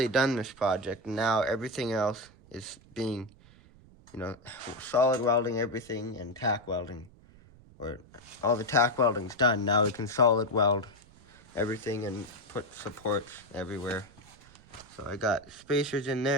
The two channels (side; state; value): right; noise; rumble, 25 dB below the sound